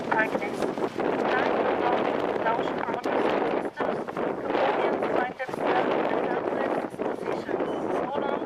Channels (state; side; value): identical; both; correlation 1.00